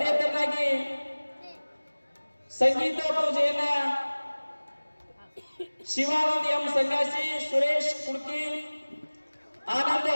ತರನಾಗಿ ಸಂಗೀತ ಪೂಜೆಯನ್ನ ಶಿವಾನಂದ್ ಎಂ ಸನ್ಯಾಸಿ, ಸುರೇಶ್ ಕುಡ್ಕಿ, ಆನಂದ್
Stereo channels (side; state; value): both; inverted; correlation -1.00